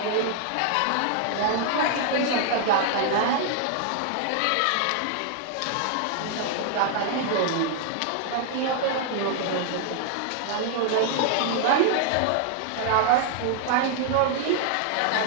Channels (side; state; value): both; different; correlation 0.00